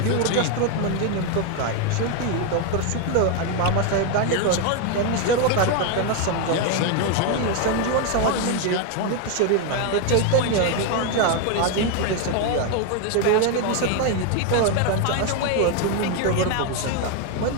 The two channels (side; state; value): both; different; correlation 0.01